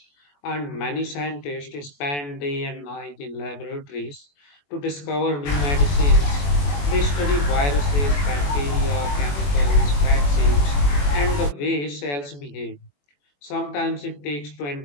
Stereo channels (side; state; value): right; late; 21 ms